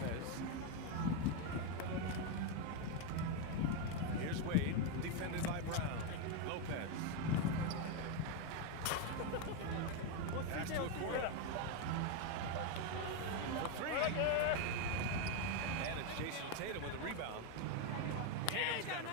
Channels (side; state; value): both; different; correlation 0.02